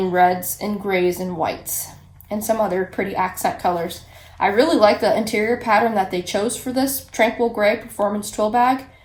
reds and grays and whites and some other pretty accent colors. I really like the interior pattern that they chose for this Tranquil Gray Performance Twill bag.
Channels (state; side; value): identical; both; correlation 1.00